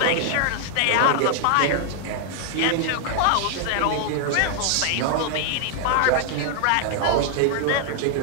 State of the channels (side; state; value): both; different; correlation 0.00